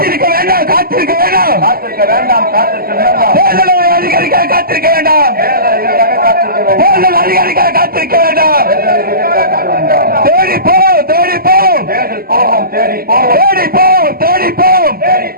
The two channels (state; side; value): late; left; 0.43 ms